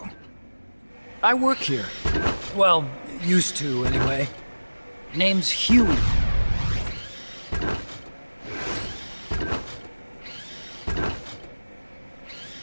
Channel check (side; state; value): both; inverted; correlation -1.00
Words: I work here. Well, used to, anyway. Name's Huey.